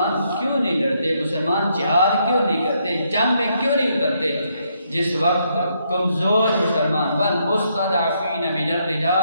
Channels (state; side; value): inverted; both; correlation -0.75